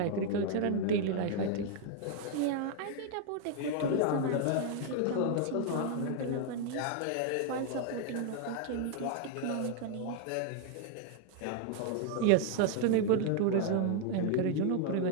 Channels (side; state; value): both; different; correlation 0.00